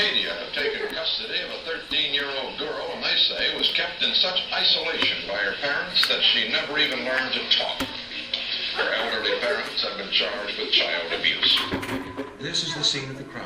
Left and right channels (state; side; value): identical; both; correlation 1.00